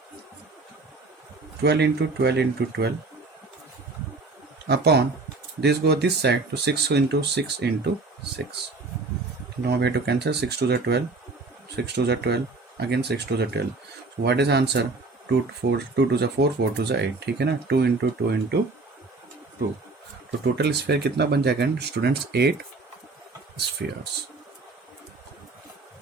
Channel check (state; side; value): quieter; left; 3.6 dB